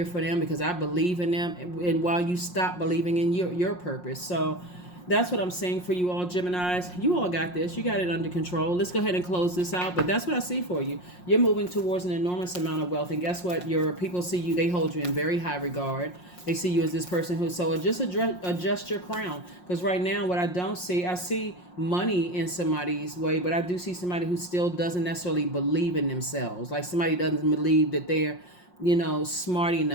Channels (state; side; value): late; right; 5.6 ms